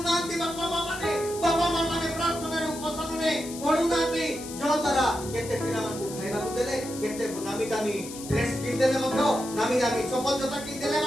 ବାପା ମା ମାନେ ପ୍ରାର୍ଥନାର ଉପସନରେ ପଢୁନାହାନ୍ତି ଯଦ୍ୱାରା କେତେ ପିଲାମାନଙ୍କୁ ଖାଇବାକୁ ଦେଲେ କେତେ ନାମୀ ଦାମୀ ଡ୍ରେସ କିଣିଦେଲେ ମଧ୍ୟ ନାମୀ ଦାମୀ ଚପଲ ଜୋତା କିଣିଦେଲେ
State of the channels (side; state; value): left; noise; hiss, 12 dB below the sound